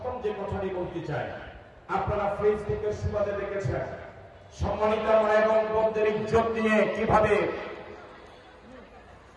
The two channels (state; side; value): identical; both; correlation 1.00